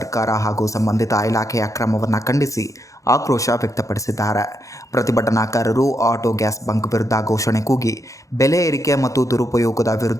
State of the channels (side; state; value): right; late; 0.16 ms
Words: ಹಾಗೂ ಸಂಬಂಧಿತ ಇಲಾಖೆಯ ಕ್ರಮವನ್ನು ಖಂಡಿಸಿ ಆಕ್ರೋಶ ವ್ಯಕ್ತಪಡಿಸಿದ್ದಾರೆ. ಪ್ರತಿಭಟನಾಕಾರರು ಆಟೋ ಗ್ಯಾಸ್ ಬಂಕ್ ವಿರುದ್ಧ ಘೋಷಣೆ ಕೂಗಿ ಬೆಲೆ ಏರಿಕೆ ಮತ್ತು ದುರುಪಯೋಗದ